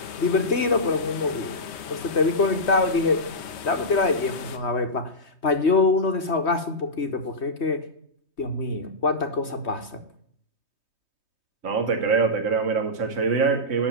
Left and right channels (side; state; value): right; late; 3.2 ms